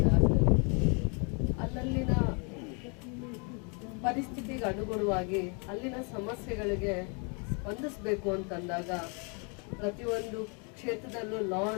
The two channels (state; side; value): quieter; right; 35.8 dB